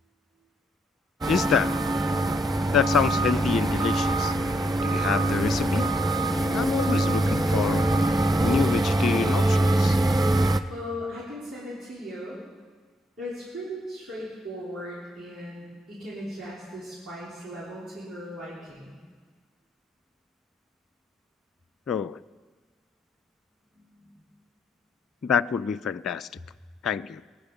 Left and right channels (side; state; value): both; normal; correlation 0.76